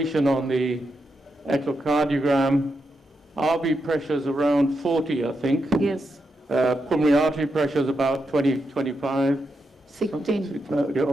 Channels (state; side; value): normal; both; correlation 0.84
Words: on the echocardiogram. RV pressures around 40, I think. Yes, Pulmonary artery pressures about 20, 25. 16.